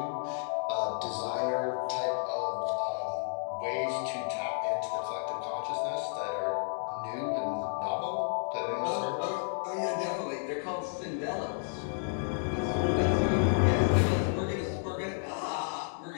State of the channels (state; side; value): silent; right; digital silence